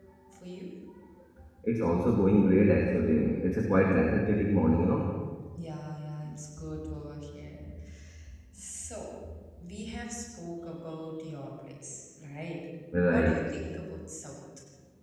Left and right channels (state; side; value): identical; both; correlation 1.00